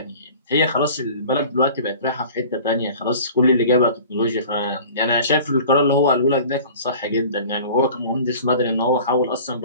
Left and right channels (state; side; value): inverted; both; correlation -0.43